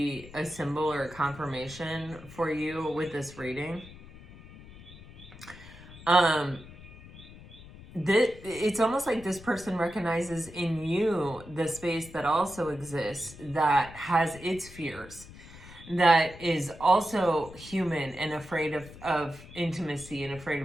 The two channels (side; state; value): left; noise; rumble, 18 dB below the sound